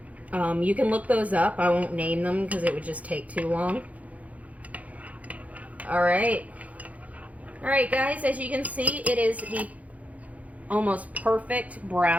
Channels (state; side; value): late; left; 0.070 ms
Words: You can look those up. I won't name them because it would just take too long. All right, guys, as you can see, it is the almost perfect